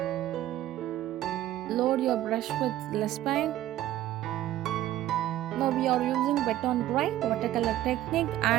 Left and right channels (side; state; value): left; quieter; 13.9 dB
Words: Load your brush with less paint. Now we are using wet on dry watercolor technique